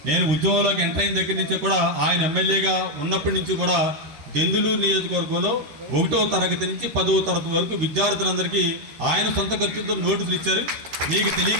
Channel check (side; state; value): left; late; 13 ms